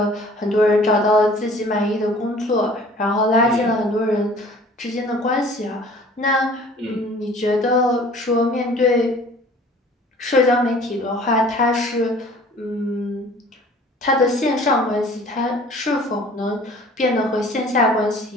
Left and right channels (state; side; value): normal; both; correlation 0.49